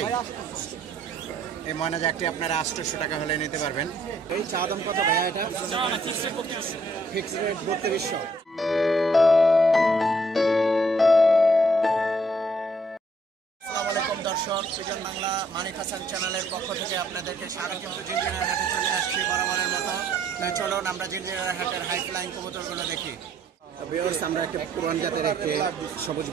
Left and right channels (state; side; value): normal; both; correlation 0.66